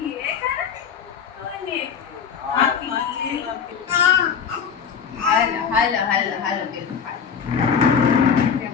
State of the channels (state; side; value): quieter; right; 6.9 dB